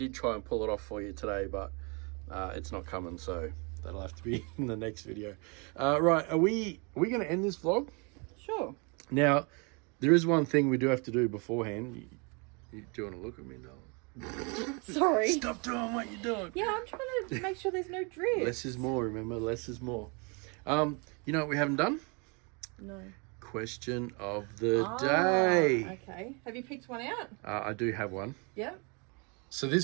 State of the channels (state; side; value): quieter; left; 32.6 dB